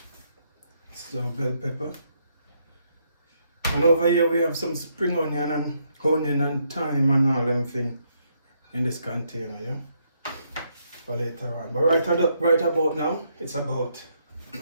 So bell pepper. And over here we have some spring onion and thyme and all them things in this container. Yeah. For later on. But right about now, it's about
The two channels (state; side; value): inverted; both; correlation -0.75